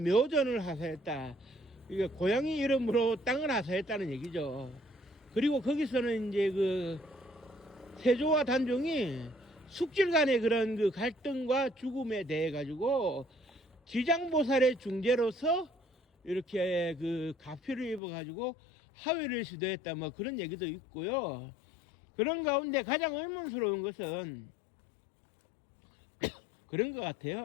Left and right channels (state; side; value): drops out; right; at 18.0 s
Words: 하사했다. 이게 고양이 이름으로 땅을 하사했다는 얘기죠. 그리고 거기서는 이제 그 세조와 단종이 숙질 간의 그런 그 갈등과 죽음에 대해 가지고 지장보살의 중재로서 이렇게 그 가피를 입어 가지고 하회를 시도했다, 뭐 그런 얘기도 있고요. 그런 가운데 가장 의문스러운 것은 그런 것